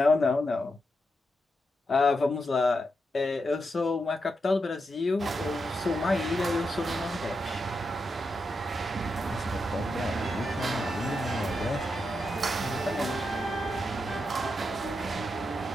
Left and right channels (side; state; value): both; normal; correlation 0.85